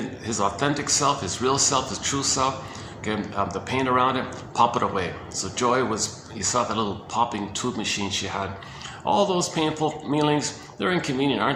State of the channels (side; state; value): both; identical; correlation 1.00